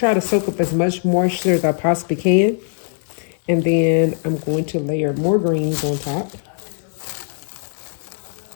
to soak up as much moisture as I possibly can. And then I'm going to layer more greens on top.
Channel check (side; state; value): right; silent; 66 dB below the other